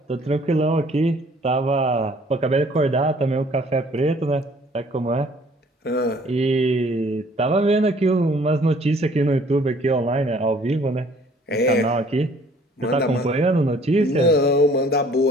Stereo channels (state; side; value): normal; both; correlation 0.57